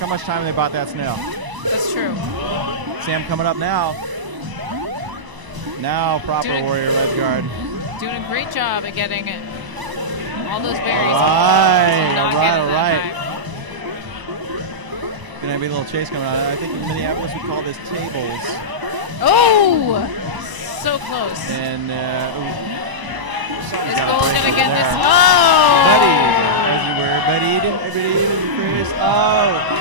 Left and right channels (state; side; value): late; left; 1.0 ms